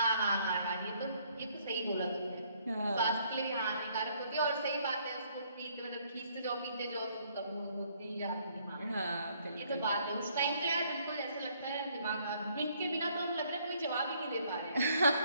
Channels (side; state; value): both; inverted; correlation -0.65